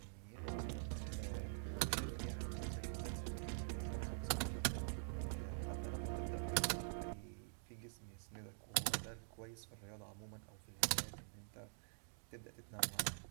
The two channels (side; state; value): left; silent; digital silence